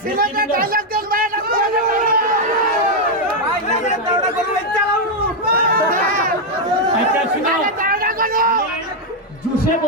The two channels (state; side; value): normal; both; correlation 0.00